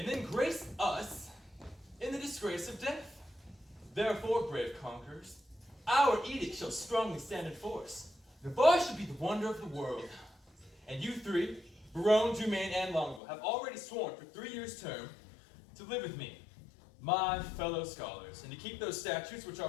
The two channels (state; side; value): drops out; right; at 13.2 s